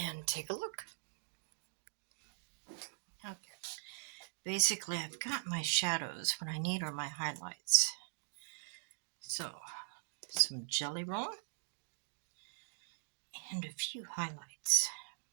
take a look. Okay. Basically, I've got my shadows. What I need are my highlights. So, some jelly roll and a few highlights.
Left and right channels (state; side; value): silent; left; digital silence